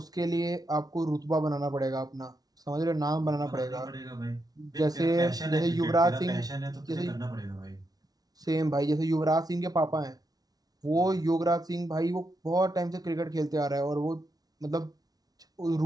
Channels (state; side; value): late; left; 0.19 ms